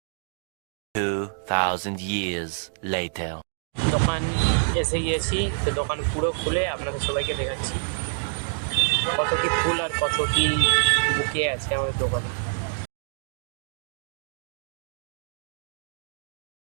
2,000 years later. দোকান এসে গিয়েছি, তো দোকান পুরো খুলে আপনাদের সবাইকে দেখাচ্ছি কত কি ফুল আর কত কি বুকে আছে আমাদের দোকানে।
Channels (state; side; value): silent; left; digital silence